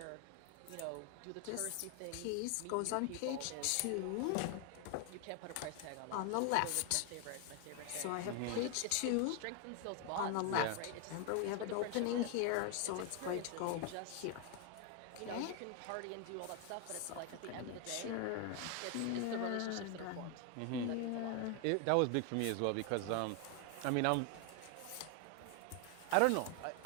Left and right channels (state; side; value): different; both; correlation 0.00